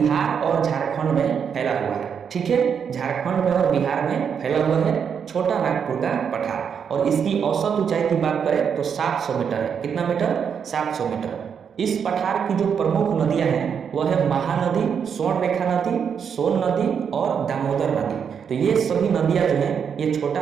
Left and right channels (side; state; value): left; quieter; 7.2 dB